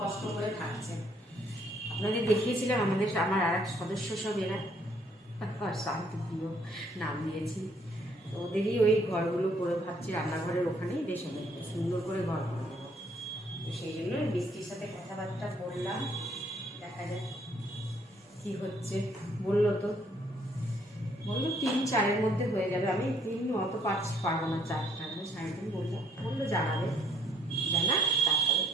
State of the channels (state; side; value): normal; both; correlation 0.66